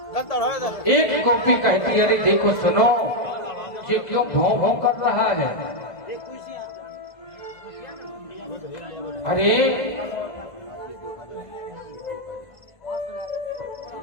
एक गोपी कहती, अरे देखो सुनो, ये क्यों भौं भौं कर रहा है? अरे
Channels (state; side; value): late; right; 1.5 ms